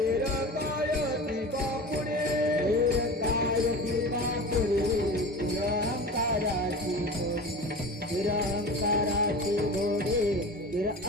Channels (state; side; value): normal; both; correlation 0.34